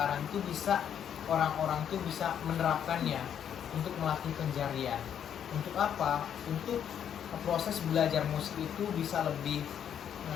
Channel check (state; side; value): quieter; right; 8.9 dB